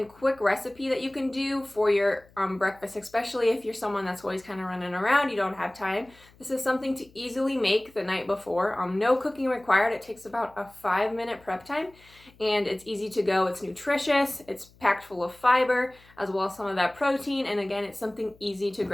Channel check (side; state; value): left; noise; hum, 27 dB below the sound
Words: quick recipe that you can do for your breakfast, especially if you're someone that's always kind of running around, you don't have time. This is something to easily make the night before. No cooking required. It takes about a 5-minute prep time and it's easy to go. It's nutritious, it's packed full of fiber as well as some of that protein. And again, it's something easy to